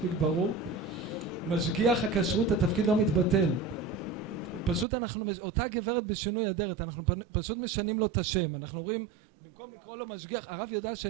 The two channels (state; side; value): drops out; left; at 4.9 s